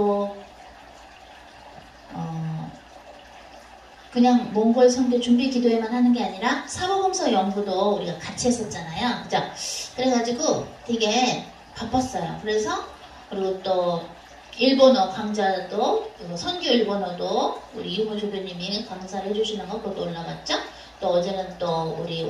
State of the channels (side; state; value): both; identical; correlation 1.00